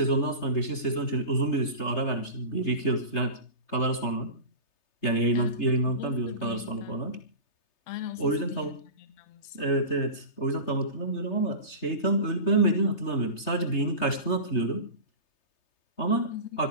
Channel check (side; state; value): right; late; 3.3 ms